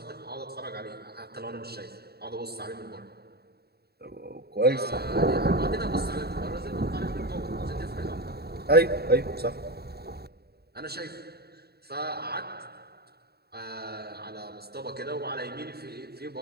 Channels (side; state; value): left; late; 0.46 ms